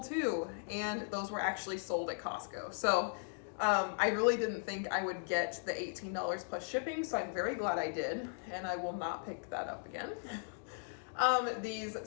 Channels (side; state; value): right; silent; digital silence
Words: too. And those were actually sold at Costco. So I really didn't think I would get the $18 plus shipping, so I'm very glad I did, and I will not pick that up again.